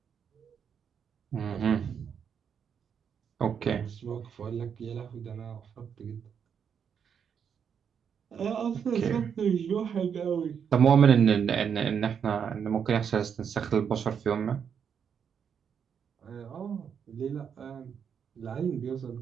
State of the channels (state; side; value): quieter; left; 7.4 dB